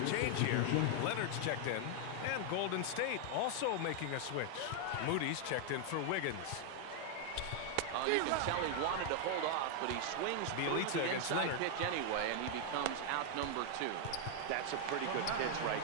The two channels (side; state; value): both; different; correlation 0.00